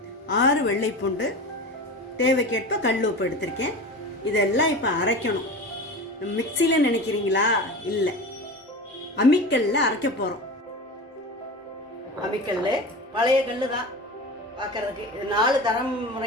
6 வெள்ளைப்பூண்டு, தேவைக்கேற்ப கல் உப்பு எடுத்திருக்கேன். இதெல்லாம் இப்போ அரைக்கணும். மிக்சியில் நினைக்கிறீங்களா? இல்லை, அம்மிக்கல்ல அரைக்க போகிறோம். அம்மிக்கல் பழைய கல் தான் பார்க்கறதுக்கு. இது 4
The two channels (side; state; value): both; normal; correlation 0.30